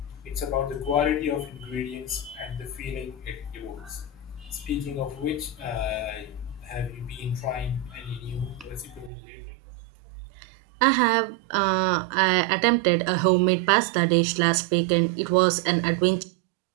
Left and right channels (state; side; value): drops out; left; at 9.1 s